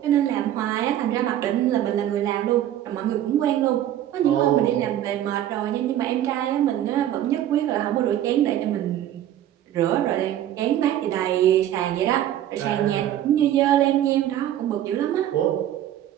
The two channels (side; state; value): left; quieter; 11.9 dB